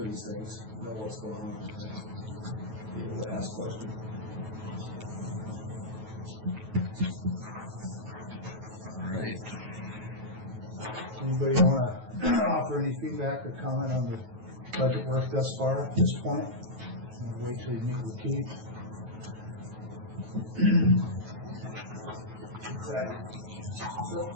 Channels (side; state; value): left; late; 9.2 ms